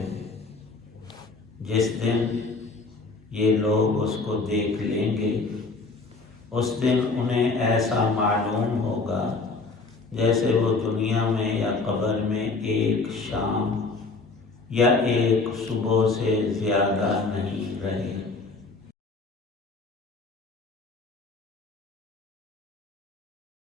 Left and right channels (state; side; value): quieter; right; 3.9 dB